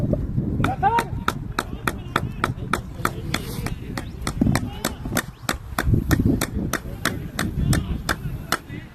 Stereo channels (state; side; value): identical; both; correlation 1.00